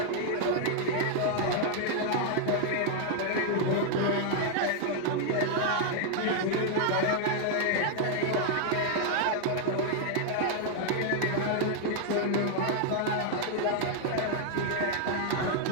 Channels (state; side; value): different; both; correlation 0.00